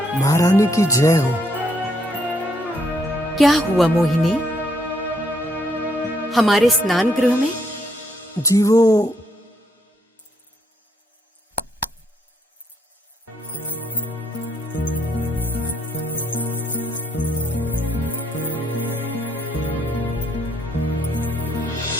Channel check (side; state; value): both; normal; correlation 0.72